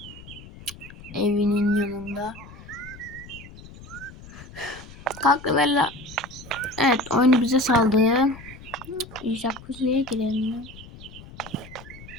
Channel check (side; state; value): left; noise; rumble, 17 dB below the sound